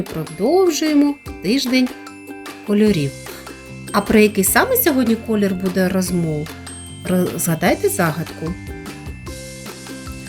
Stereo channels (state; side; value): identical; both; correlation 1.00